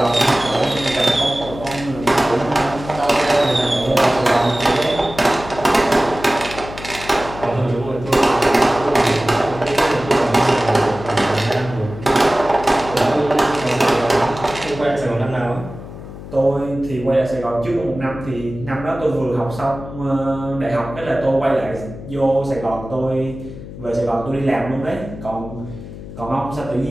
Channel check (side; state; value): left; noise; hum, 13 dB below the sound